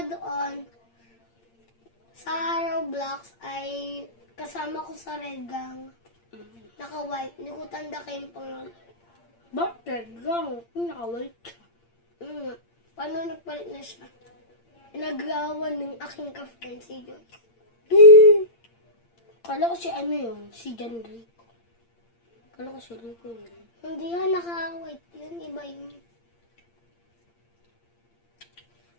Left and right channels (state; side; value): late; right; 8.7 ms